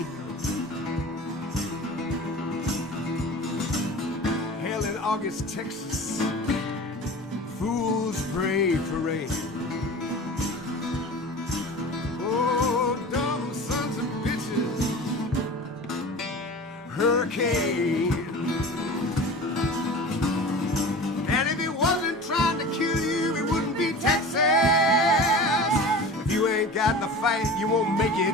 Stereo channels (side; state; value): both; normal; correlation 0.36